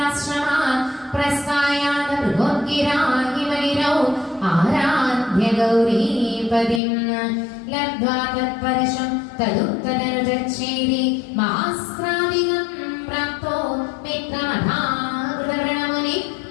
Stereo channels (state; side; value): drops out; right; at 6.8 s